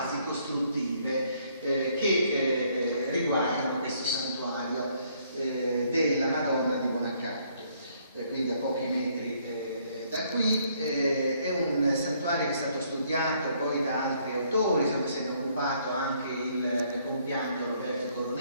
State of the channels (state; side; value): inverted; both; correlation -0.67